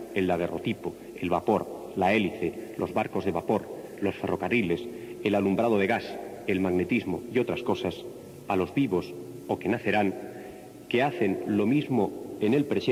el daguerrotipo, el vapor, la hélice, los barcos de vapor, los ferrocarriles, el alumbrado de gas, el magnetismo y otras cosas, a los vivos o que nacerán, que hacen lo mismo en el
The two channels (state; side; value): identical; both; correlation 1.00